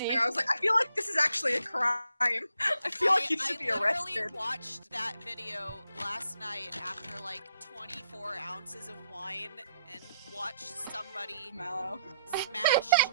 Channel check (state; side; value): inverted; both; correlation -0.75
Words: I was like, I feel like this is actually a crime. I feel like you should be arrested. I literally watched that video last night after like 24 ounces of wine and watched somebody smash